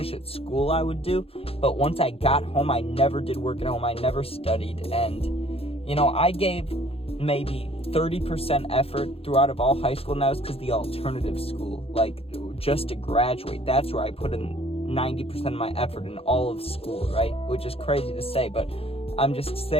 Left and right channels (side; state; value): right; late; 0.28 ms